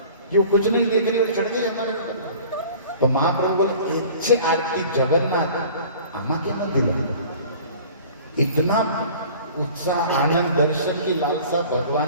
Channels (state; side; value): inverted; both; correlation -0.45